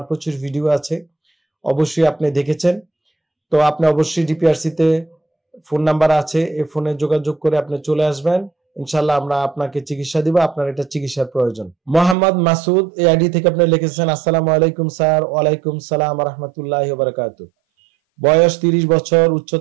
প্রচুর ভিডিও আছে, অবশ্যই আপনি দেখেছেন। তো আপনি অবশ্যই DPRC তে ফোন নাম্বার আছে, এই ফোনে যোগাযোগ করে আপনি চলে আসবেন, ইনশাল্লাহ আমরা আপনাকে চিকিৎসা দিব, আপনার এটা চিকিৎসার প্রয়োজন। মোহাম্মদ মাসুদ এই আইডি থেকে আপনি লিখেছেন, আসসালামু আলাইকুম স্যার। ওয়ালাইকুম সালাম রাহমাতুল্লাহি ওয়া বারাকাতুহু। বয়স 30 বছর,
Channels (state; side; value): drops out; left; at 12.2 s